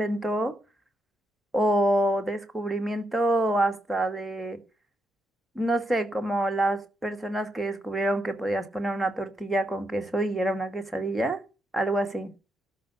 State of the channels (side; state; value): both; normal; correlation 0.81